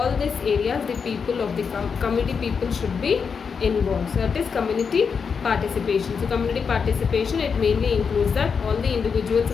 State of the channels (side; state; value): right; quieter; 6.0 dB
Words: these areas, the people of the community people should be involved. So that is community participation. So community participation, it mainly includes that all the individuals